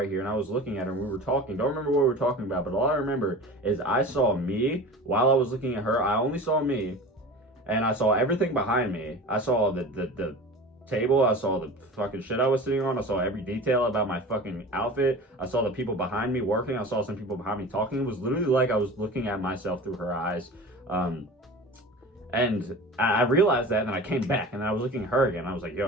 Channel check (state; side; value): normal; both; correlation 0.35